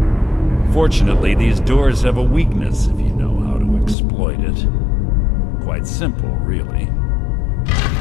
Fortunately, these doors have a weakness if you know how to exploit it. Quite simple, really.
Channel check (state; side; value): drops out; right; at 4.0 s